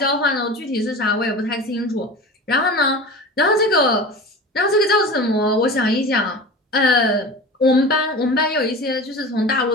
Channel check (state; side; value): normal; both; correlation 0.33